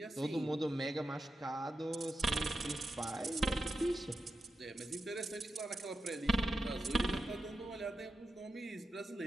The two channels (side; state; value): both; normal; correlation 0.89